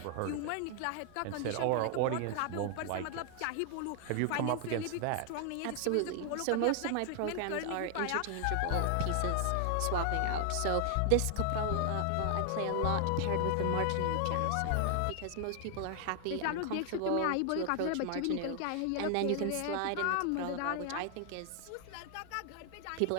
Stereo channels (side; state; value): both; different; correlation 0.00